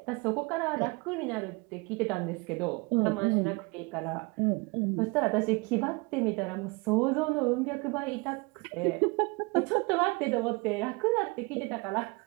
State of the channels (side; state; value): left; quieter; 27.9 dB